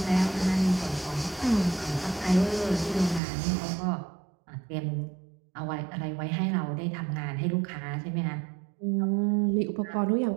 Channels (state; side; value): drops out; left; at 3.2 s